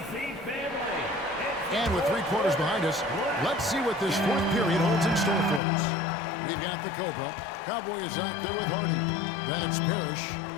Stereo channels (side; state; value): right; drops out; at 5.6 s